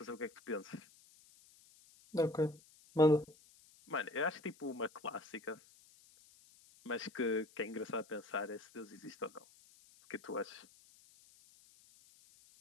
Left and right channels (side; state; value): left; noise; hiss, 25 dB below the sound